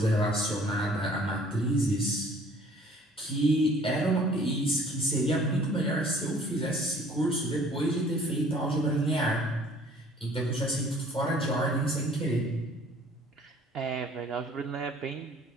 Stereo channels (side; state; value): both; normal; correlation 0.55